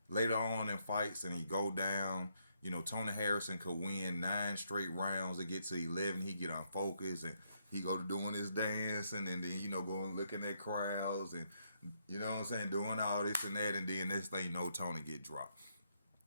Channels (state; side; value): inverted; both; correlation -0.75